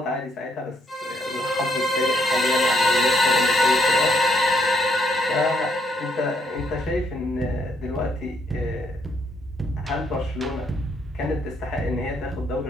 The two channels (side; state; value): both; normal; correlation 0.72